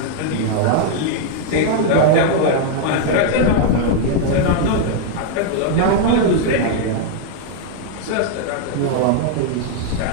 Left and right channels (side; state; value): both; different; correlation 0.00